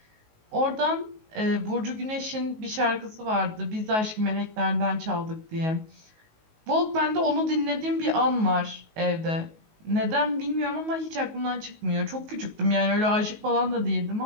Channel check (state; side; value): late; left; 19 ms